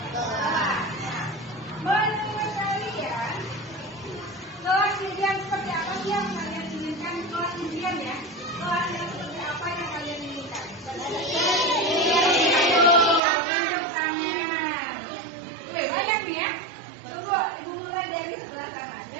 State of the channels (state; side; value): drops out; left; at 13.2 s